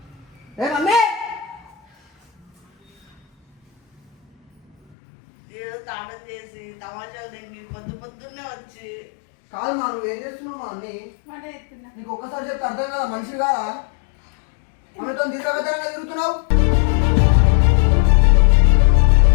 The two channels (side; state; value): right; drops out; at 5.0 s